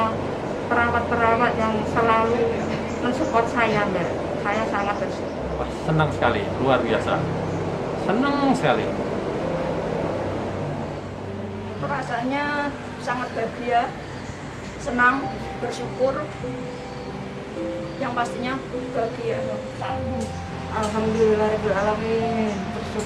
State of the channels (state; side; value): identical; both; correlation 1.00